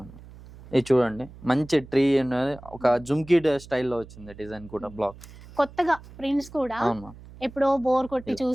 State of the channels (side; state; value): right; noise; hum, 19 dB below the sound